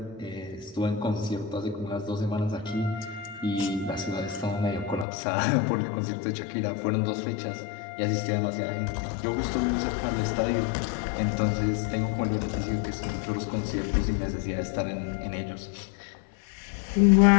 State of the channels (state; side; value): drops out; right; at 5.1 s